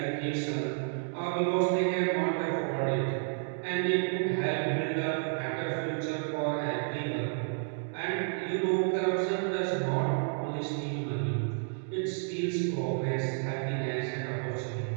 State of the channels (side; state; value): left; silent; digital silence